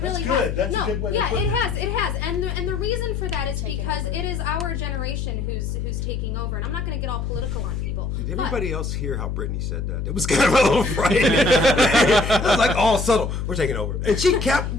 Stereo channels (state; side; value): noise; left; hum, 3 dB below the sound